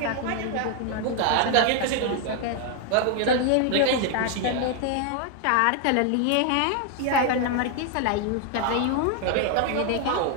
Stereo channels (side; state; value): both; different; correlation 0.00